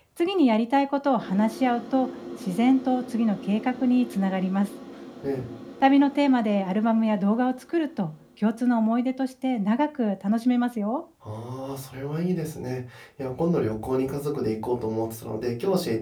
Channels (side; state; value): both; identical; correlation 1.00